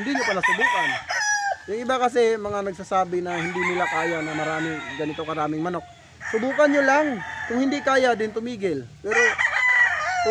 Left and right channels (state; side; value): identical; both; correlation 1.00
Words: niyo pala subukan. Yung iba kasi mga nagsasabi na hindi nila kaya na ganito karaming manok. Subukan niyo lang. Kung hindi kaya din tumigil. Pero